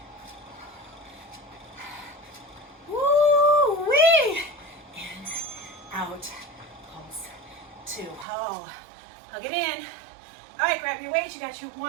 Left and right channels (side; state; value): left; drops out; at 8.2 s